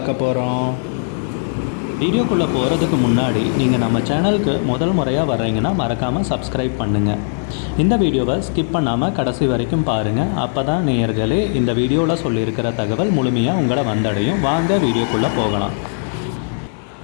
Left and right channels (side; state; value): right; silent; digital silence